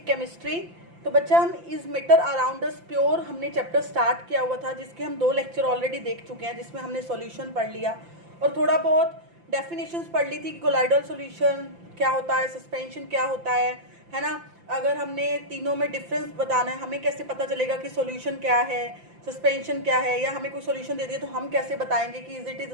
chemistry. तो बच्चा, हम is matter around us pure हमने चैप्टर स्टार्ट किया हुआ था, जिसके हम 2 लेक्चर ऑलरेडी देख चुके हैं, जिसमें हमने सॉल्यूशन पढ़ लिया और थोड़ा बहुत डेफिनेशंस पढ़ ली थी कि कोलाइडल सॉल्यूशन क्या होता है, सस्पेंशन क्या होता है ना। अगर हमने तीनों में डिफरेंस बताना है, हमें कैसे पता चलेगा कि सॉल्यूशन क्या है, सस्पेंशन क्या है, या हमें कोई सॉल्यूशन दे दिया तो हम कैसे बताएंगे कि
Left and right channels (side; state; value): left; late; 5.8 ms